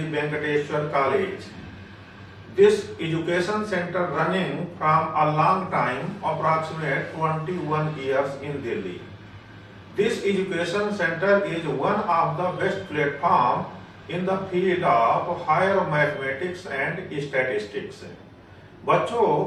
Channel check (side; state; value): both; identical; correlation 1.00